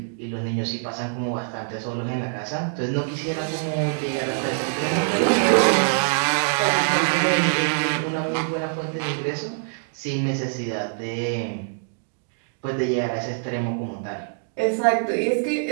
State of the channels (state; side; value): silent; left; digital silence